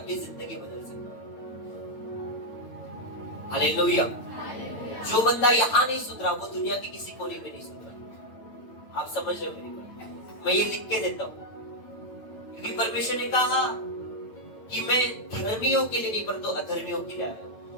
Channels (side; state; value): right; late; 8.9 ms